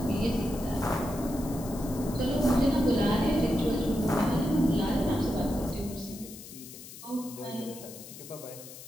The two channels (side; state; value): left; noise; hiss, 15 dB below the sound